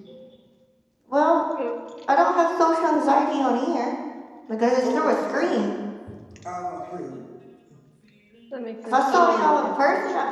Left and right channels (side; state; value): both; identical; correlation 1.00